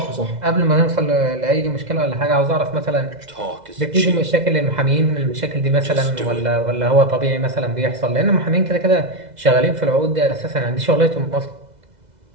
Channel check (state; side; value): late; left; 2.0 ms